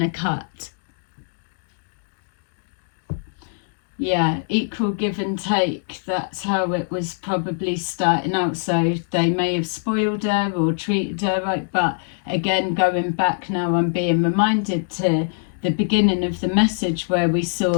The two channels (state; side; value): silent; right; digital silence